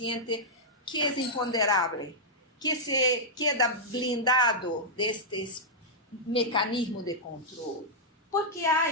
que é imponderável, que se queda blindado destes mecanismos de controle. Porque há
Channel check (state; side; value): normal; both; correlation -0.09